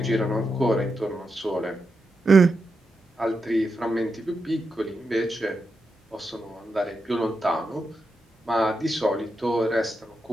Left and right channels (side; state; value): both; normal; correlation 0.86